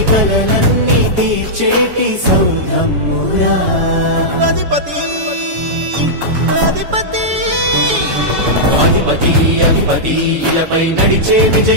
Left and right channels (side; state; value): left; late; 7.1 ms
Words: కలలన్నీ తీర్చేటి సౌరమ్మురా అధిపతి అధిపతి అధిపతి అధిపతి ఇలపై నడిచే